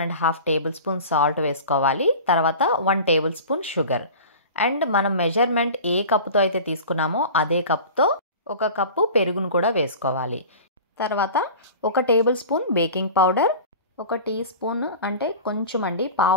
టేబుల్ స్పూన్ సాల్ట్ వేసుకోవాలి. తర్వాత 1 టేబుల్ స్పూన్ షుగర్. అండ్ మనం మెజర్మెంట్ ఏ కప్పుతో అయితే తీసుకున్నామో అదే కప్తో 1 కప్పు పెరుగును కూడా వేసుకోవాలి. తర్వాత 1 tablespoon baking powder, 1 teaspoon అంటే కొంచెం అండి,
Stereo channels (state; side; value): inverted; both; correlation -0.36